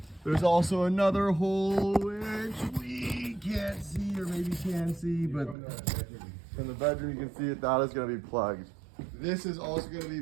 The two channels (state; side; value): drops out; left; at 5.6 s